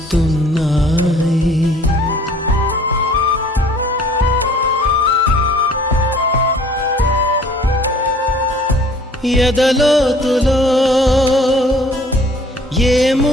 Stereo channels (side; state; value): both; normal; correlation 0.54